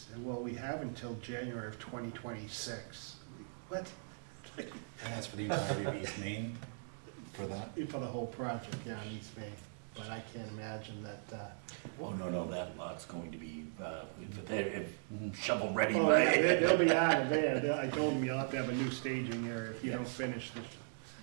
well, we have until January of 2026. What? And that's for the entirety of East Main, for that? For the whole project, yeah, in East Main. But I can't imagine that, Oh, no, that lot's going to be, shovel ready oh, by. yeah, they'll be out of there. I told him you'll have to have a new staging area if you don't finish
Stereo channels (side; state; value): left; silent; digital silence